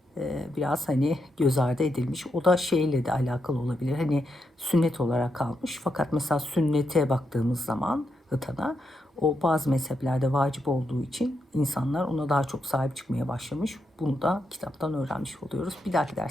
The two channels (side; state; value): both; normal; correlation 0.83